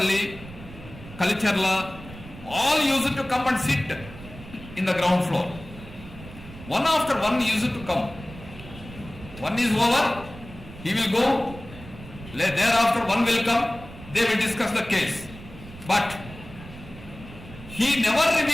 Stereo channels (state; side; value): noise; right; rumble, 16 dB below the sound